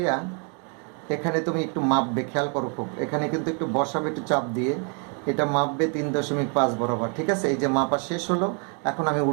এখানে তুমি একটু মাপবে, খেয়াল করো খুব, এখানে কিন্তু একটু বসাবে একটু চাপ দিয়ে, এটা মাপবে 3.5 বরাবর। ঠিক আছে, এই যে মাপা শেষ হলো, এখন আমি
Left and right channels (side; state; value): left; quieter; 38.7 dB